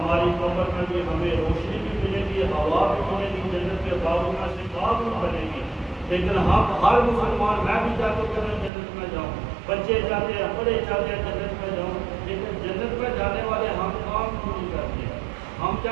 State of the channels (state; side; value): drops out; left; at 8.7 s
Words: قبر میں بھی ہمیں روشنی بھی ملے گی، ہوا بھی ملے گی، جنت کے باغوں میں سے باغ بھی بنے گی۔ لیکن ہم ہر مسلمان، میں بھی چاہتا ہوں کہ میں جنت میں جاؤں، بچے چاہتے ہیں، بڑے چاہتے ہیں جنت میں جاؤں، لیکن جنت میں جانے والے ہم کام کیوں نہیں کرتے؟ ہم